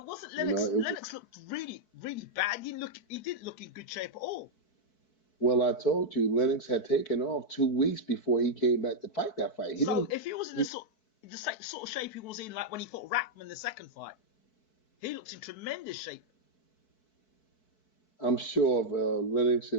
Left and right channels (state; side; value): late; right; 4.6 ms